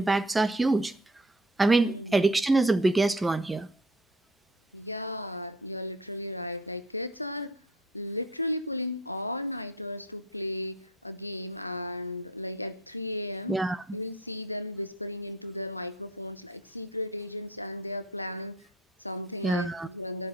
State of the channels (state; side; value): normal; both; correlation 0.47